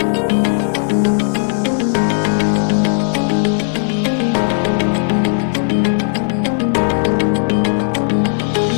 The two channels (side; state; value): right; silent; digital silence